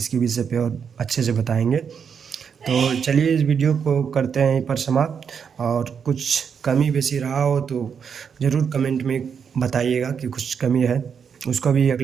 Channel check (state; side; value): quieter; left; 6.9 dB